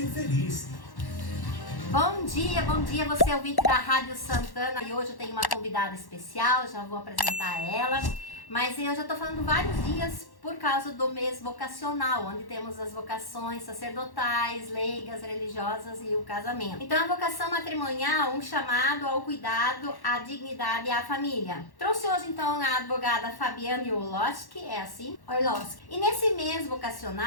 feliz. Bom dia, você é ouvinte da Rádio Santana e hoje eu tenho uma convidada especial, já vou apresentar ela. Mas eu já estou falando vários dias por causa do mês vocacional, onde temos as vocações sacerdotais, leigas, religiosas e o casamento. Então a vocação matrimonial, um chamado ao cuidado, à dignidade e à família. Trouxe hoje então a advogada Fabiane Orlowski, é assim? Orlowski. E nesse mês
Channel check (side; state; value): right; late; 1.1 ms